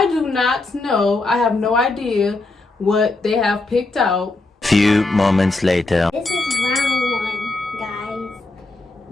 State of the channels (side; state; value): right; quieter; 3.1 dB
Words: do not know, I have no idea what they have picked out. Few moments later. This is round one, guys.